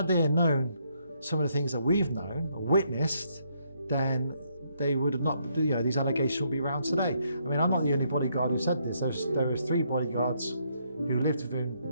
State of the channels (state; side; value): inverted; both; correlation -0.73